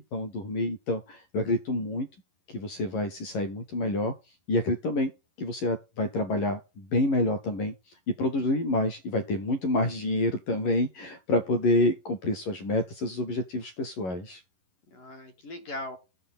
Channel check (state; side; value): late; right; 11 ms